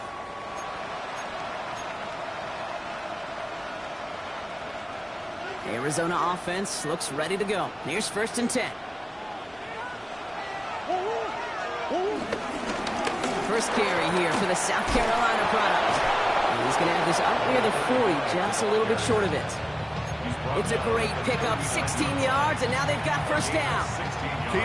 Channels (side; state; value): both; identical; correlation 1.00